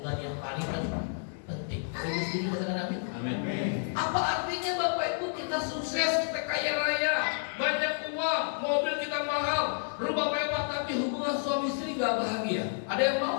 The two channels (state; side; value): silent; right; 58 dB below the other